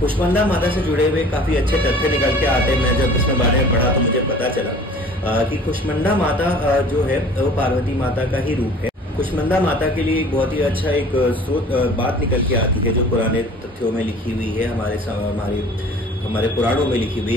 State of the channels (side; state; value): both; normal; correlation 0.47